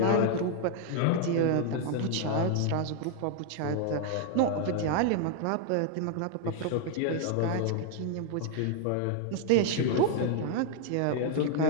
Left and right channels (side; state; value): both; different; correlation 0.00